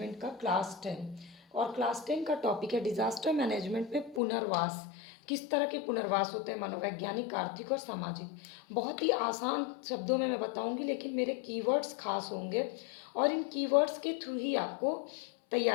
का class 10 और class 10 का टॉपिक है डिज़ास्टर मैनेजमेंट में पुनर्वास। किस तरह के पुनर्वास होते हैं, मनोवैज्ञानिक, आर्थिक और सामाजिक। बहुत ही आसान शब्दों में मैं बताऊंगी, लेकिन मेरे कीवर्ड्स खास होंगे और इन कीवर्ड्स के थ्रू ही आपको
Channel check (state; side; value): drops out; right; at 4.2 s